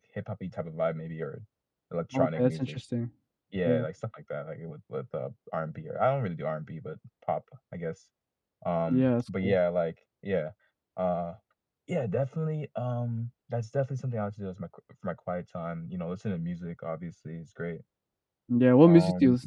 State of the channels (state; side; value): identical; both; correlation 1.00